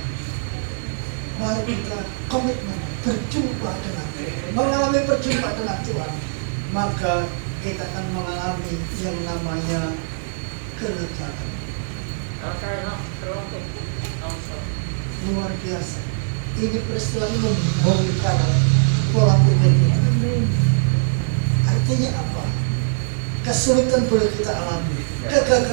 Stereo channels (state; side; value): silent; left; digital silence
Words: Mari kita komitmen berjumpa dengan mengalami perjumpaan dengan Tuhan. Maka kita akan mengalami yang namanya kelegaan. Luar biasa. Ini peristiwa ini membongkar pola pikir kita. Artinya apa? Kesulitan boleh kita alami,